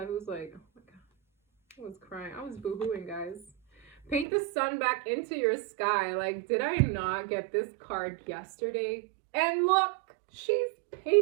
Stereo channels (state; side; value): drops out; left; at 4.2 s